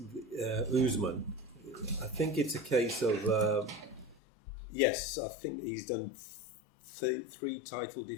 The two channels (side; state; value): right; drops out; at 4.2 s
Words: I think it's a case of yes, I think he's done 3 title